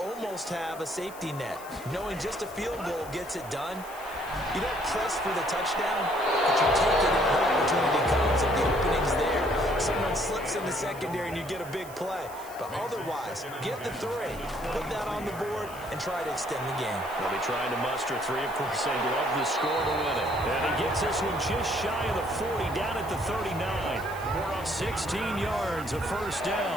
have a safety net. Knowing just a field goal gets it done. You don't press for the touchdown, but you take it if the opportunity comes and the opening's there. Someone slips in the secondary and you get a big play. But otherwise, get the 3, put that on the board, and try to extend the game. They'll be trying to muster 3. Of course, they'd love the score to win it. And he gets this one just shy of the 40, down at the 39. 16 yards, a first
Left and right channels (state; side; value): noise; left; hiss, 18 dB below the sound